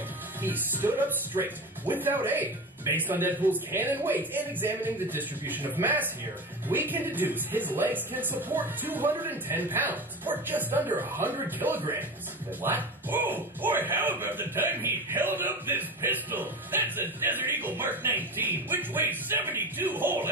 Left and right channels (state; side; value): normal; both; correlation 0.27